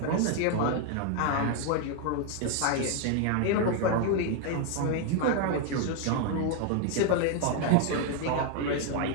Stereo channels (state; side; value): different; both; correlation 0.01